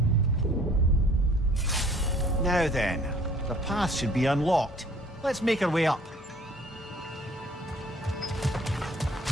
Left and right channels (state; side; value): normal; both; correlation 0.55